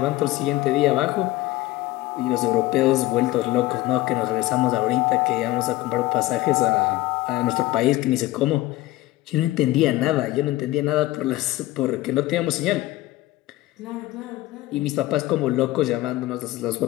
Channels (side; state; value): right; quieter; 17.2 dB